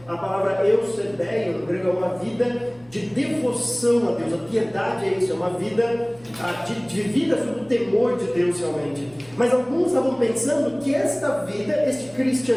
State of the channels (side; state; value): left; noise; hum, 28 dB below the sound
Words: A palavra eusebeia no grego é uma vida de devoção a Deus. A piedade é isso, é uma vida de vida sob o temor de Deus realmente. Mas alguns estavam pensando que esta vida, este